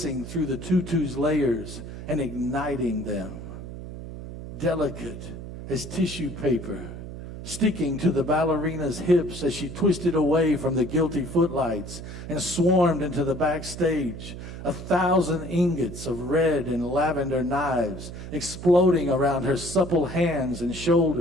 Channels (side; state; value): right; noise; hum, 10 dB below the sound